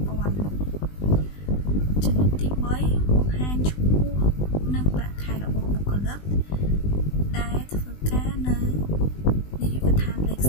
5,000 ចំណុចទី3បង្ហាញឈ្មោះនិងប្រាក់ខែរបស់បុគ្គលិកដែលធ្វើការនៅនាយកដ្ឋានលេខ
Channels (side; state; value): right; late; 20 ms